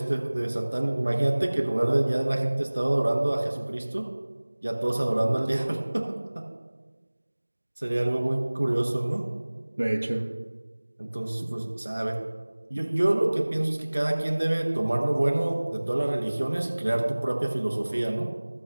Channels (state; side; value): inverted; both; correlation -1.00